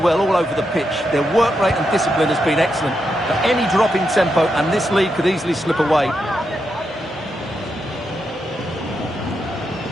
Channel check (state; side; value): normal; both; correlation 0.84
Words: all over the pitch. Their work rate and discipline has been excellent. But any drop in tempo and this lead could easily slip away.